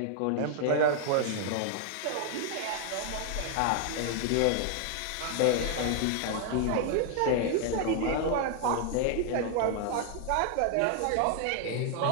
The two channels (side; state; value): both; different; correlation 0.00